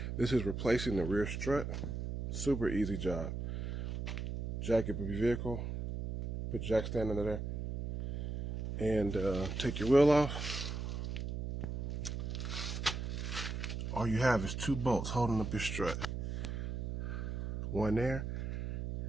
This is replacing the rear strut. Super easy job. Jack your vehicle, put jack stand under there, and take your wheel off. All you have is two bolts holding up your strut. One there,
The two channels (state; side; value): noise; right; hum, 4 dB below the sound